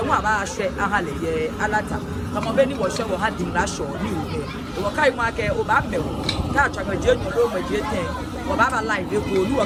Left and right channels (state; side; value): identical; both; correlation 1.00